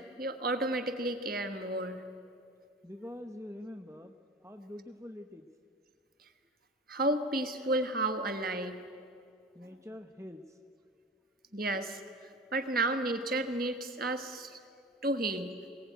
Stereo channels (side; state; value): both; normal; correlation 0.34